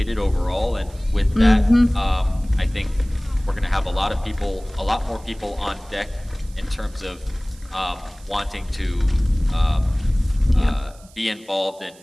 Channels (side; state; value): right; noise; hiss, 25 dB below the sound